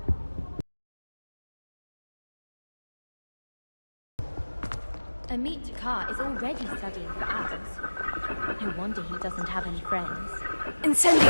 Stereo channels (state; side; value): inverted; both; correlation -1.00